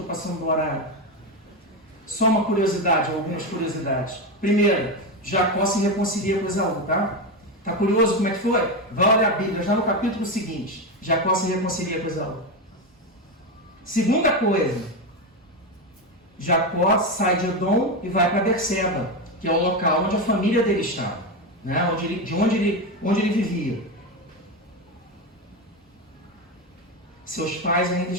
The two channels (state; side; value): normal; both; correlation 0.14